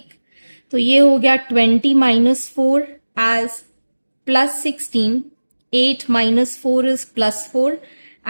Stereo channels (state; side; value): inverted; both; correlation -1.00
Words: तो ये हो गया 20 - 4 as +16. 8 - 4 is +4